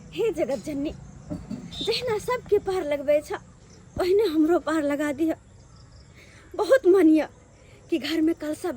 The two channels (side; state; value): both; identical; correlation 1.00